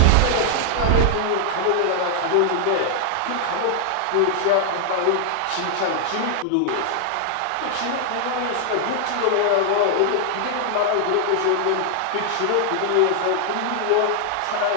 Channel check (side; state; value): both; different; correlation 0.00